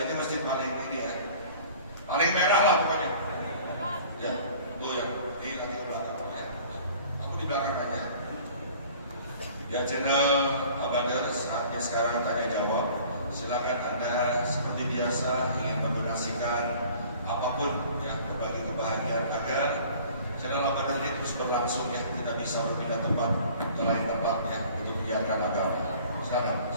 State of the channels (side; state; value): both; inverted; correlation -0.49